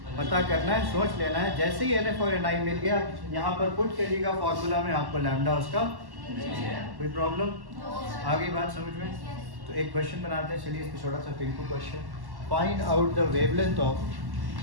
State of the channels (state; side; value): late; left; 1.1 ms